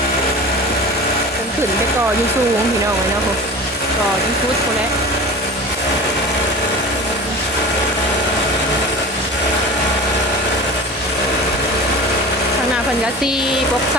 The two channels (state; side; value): normal; both; correlation 0.35